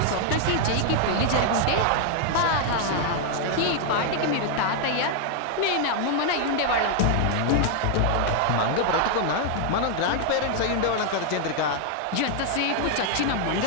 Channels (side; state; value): both; different; correlation 0.00